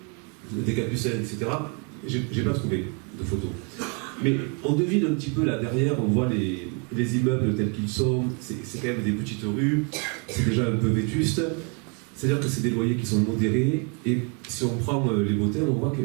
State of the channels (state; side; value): quieter; left; 35.6 dB